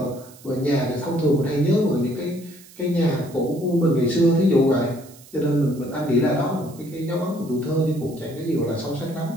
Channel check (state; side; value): noise; right; hiss, 22 dB below the sound